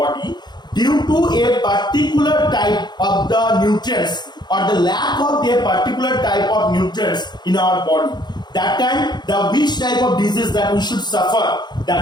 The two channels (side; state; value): right; late; 0.21 ms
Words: due to a particular type of the nutrients or the lack of a particular type of nutrients in our body. That time, the which type of disease that we should suffer,